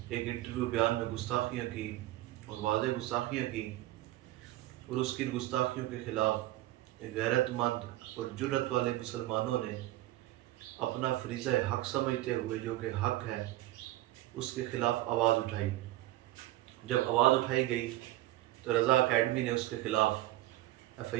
ایک انٹرویو بیان میں گستاخیاں کی اور واضح گستاخیاں کی، اور اس کی گستاخیوں کے خلاف غیرت مند اور جرت والے مسلمانوں نے اپنا فریضہ حق سمجھتے ہوئے، جو کہ حق ہے، اس کے خلاف آواز اٹھائی۔ جب آواز اٹھائی گئی تو رضا اکیڈمی نے اس کے خلاف ایف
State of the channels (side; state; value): left; quieter; 16.3 dB